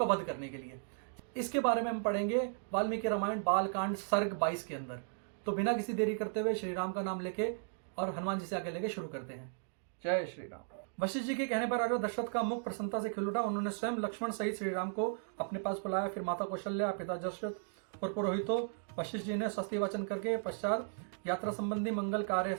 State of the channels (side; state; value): left; silent; digital silence